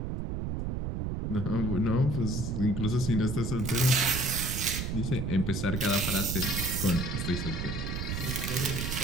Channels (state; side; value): noise; right; rumble, 3 dB below the sound